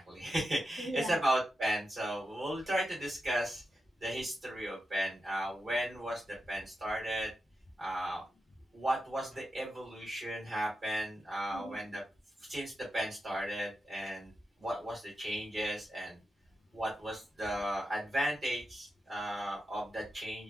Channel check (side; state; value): both; normal; correlation 0.89